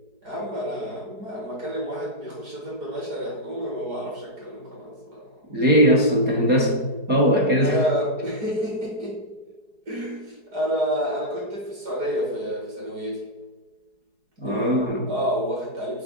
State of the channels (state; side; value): late; left; 4.7 ms